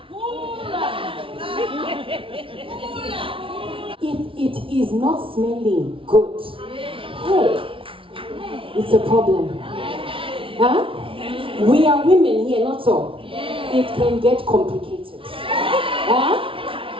If it is not smelling good, hey, it's a problem. Huh? We are women here, not so. It can get complicated. Huh?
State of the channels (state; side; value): late; left; 0.25 ms